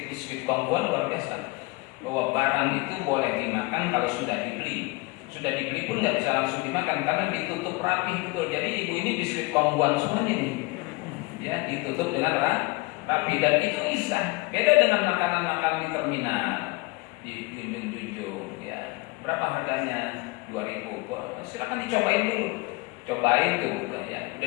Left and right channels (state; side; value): quieter; right; 25.0 dB